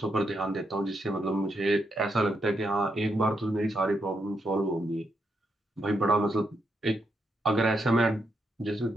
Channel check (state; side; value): normal; both; correlation 0.81